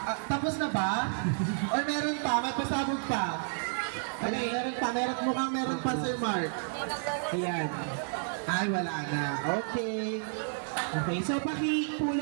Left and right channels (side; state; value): left; silent; 57 dB below the other